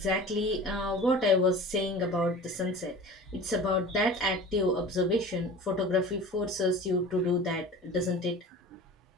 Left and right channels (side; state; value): both; normal; correlation 0.38